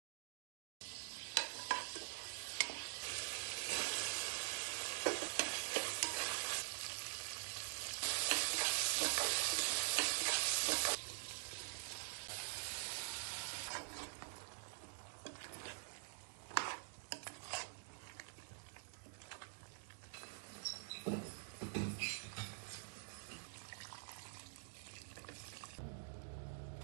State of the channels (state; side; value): silent; left; digital silence